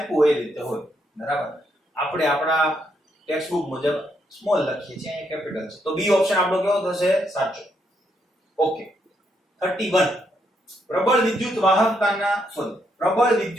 હોય એ રીતે હોય. બરાબર, આપણે આપણા ટેક્સ્ટ બુક મુજબ સ્મોલ લખીએ છીએ, અહીંયા કેપિટલ છે, તો B ઓપ્શન આપણો કેવો થશે? સાચો. ઓકે, 31, પ્રબળ વિદ્યુત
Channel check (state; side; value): normal; both; correlation 0.76